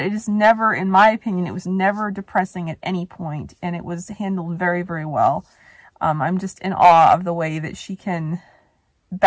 it is never, in my opinion, it was never depressing at any point, and it was handled very, very well. I'm just in awe of the way that she can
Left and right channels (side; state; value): both; identical; correlation 1.00